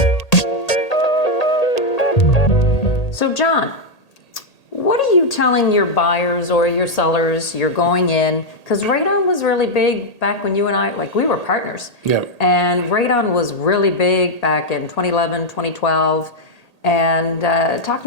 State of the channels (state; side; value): late; right; 1.8 ms